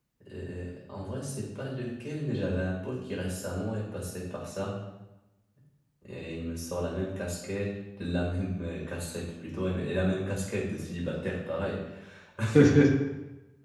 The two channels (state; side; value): identical; both; correlation 1.00